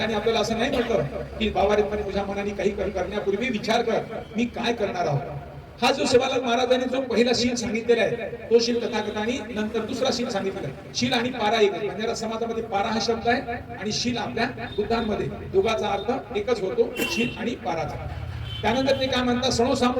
आपल्याला असं नाही म्हटलं की बाबारे तुझ्या मनाने काही करण्यापूर्वी विचार कर, मी काय करणार आहोत. हा जो शिवालाल महाराजांनी जो पहिला शील सांगितलेला आहे तो शील तथागतांनी नंतर दुसरा शील सांगितलेला आहे. शील आणि पारा एक आहे. बंजारा समाजामध्ये पारा हा शब्द आहे आणि शील आपल्या बुद्धांमध्ये दोघाचा अर्थ एकच होतो, शील आणि पाराचा. त्यानंतर ते काय म्हणतात, सणो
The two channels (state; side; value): identical; both; correlation 1.00